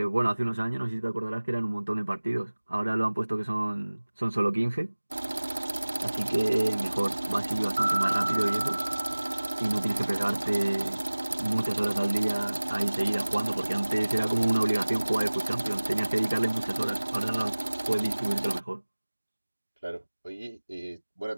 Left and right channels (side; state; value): both; inverted; correlation -1.00